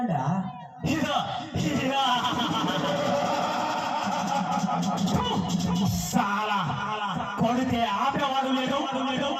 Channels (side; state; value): both; identical; correlation 1.00